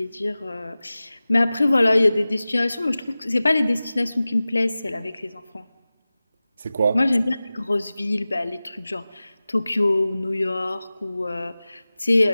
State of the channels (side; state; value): both; inverted; correlation -0.97